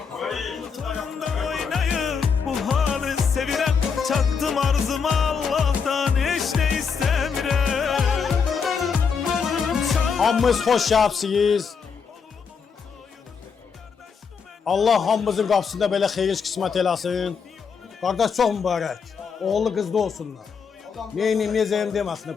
Oynayıp bu halı sevirem. Çattım arzuma Allah'tan hiç ne istemirem. Hamımız hoş yapsınız. Allah hamımızın qapısında belə xeyir qismət eləsin. Qardaş çox mübarək. Oğullu qızlı olsunlar. Neyini mezeyim deməsinlər,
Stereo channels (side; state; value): right; quieter; 6.0 dB